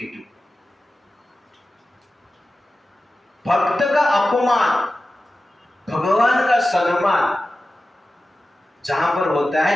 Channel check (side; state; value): both; normal; correlation 0.94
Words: भक्त का अपमान, भगवान का सम्मान जहां पर होता